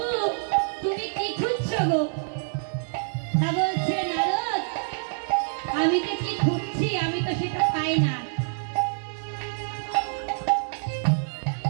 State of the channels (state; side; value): silent; left; digital silence